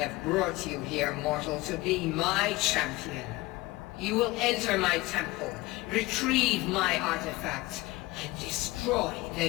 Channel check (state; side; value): quieter; right; 20.7 dB